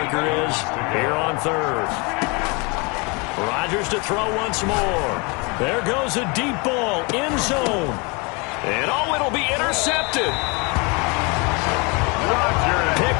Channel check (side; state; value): right; quieter; 29.6 dB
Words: is here on third. Rodgers to throw once more. There goes a deep ball, end zone. And it'll be intercepted.